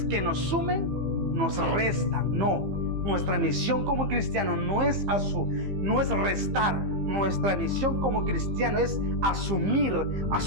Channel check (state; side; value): late; left; 15 ms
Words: que nos sumen, nos restan. No, nuestra misión como cristiano no es restar. Nuestra misión como cristiano es asumir, a